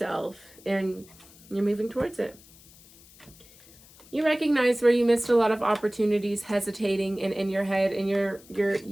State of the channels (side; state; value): left; noise; hiss, 24 dB below the sound